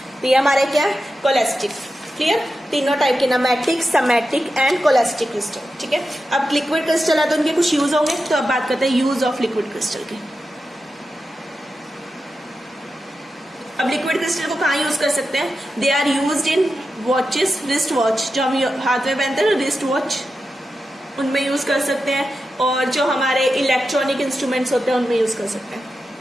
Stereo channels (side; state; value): both; normal; correlation 0.90